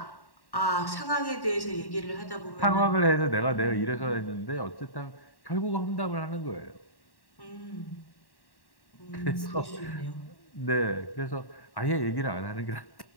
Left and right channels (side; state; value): right; late; 1.1 ms